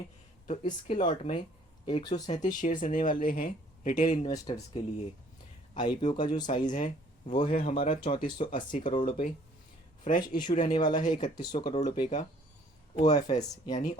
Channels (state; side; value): normal; both; correlation 0.59